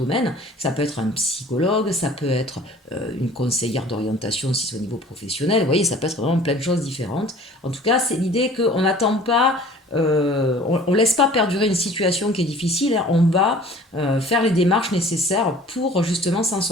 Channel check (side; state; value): both; normal; correlation 0.48